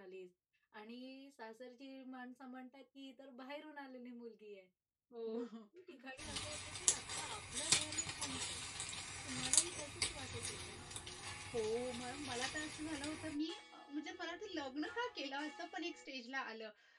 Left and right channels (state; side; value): identical; both; correlation 1.00